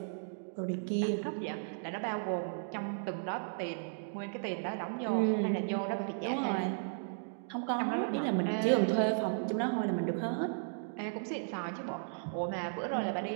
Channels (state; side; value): silent; left; digital silence